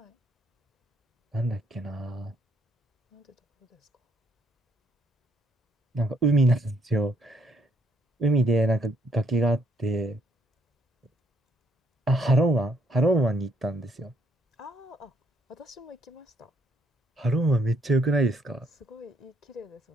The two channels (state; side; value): normal; both; correlation 0.70